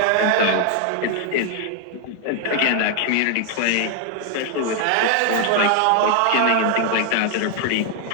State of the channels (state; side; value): different; both; correlation 0.00